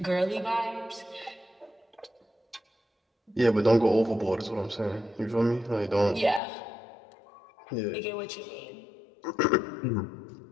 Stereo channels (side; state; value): right; drops out; at 6.4 s